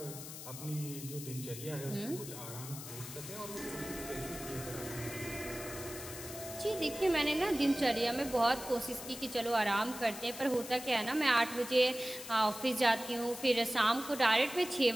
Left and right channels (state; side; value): noise; left; hiss, 11 dB below the sound